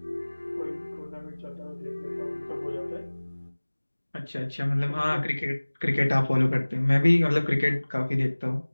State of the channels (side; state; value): both; inverted; correlation -1.00